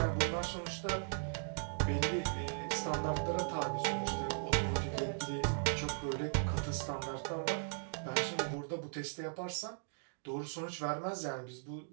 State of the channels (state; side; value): silent; left; digital silence